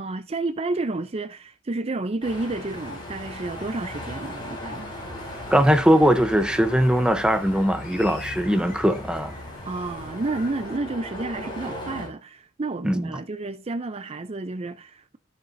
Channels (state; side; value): normal; both; correlation 0.82